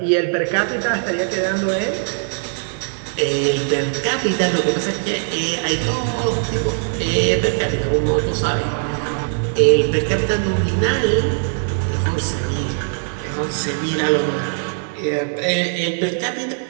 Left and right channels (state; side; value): silent; left; digital silence